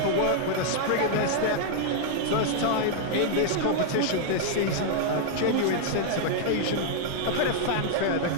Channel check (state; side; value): different; both; correlation -0.01